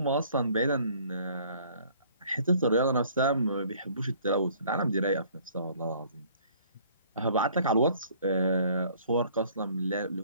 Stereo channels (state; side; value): inverted; both; correlation -0.57